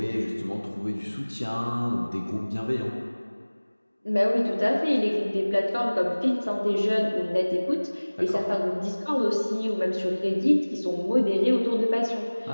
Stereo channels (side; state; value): both; inverted; correlation -1.00